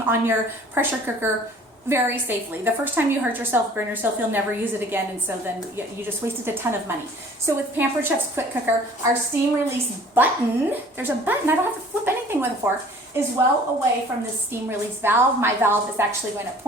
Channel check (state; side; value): normal; both; correlation 0.50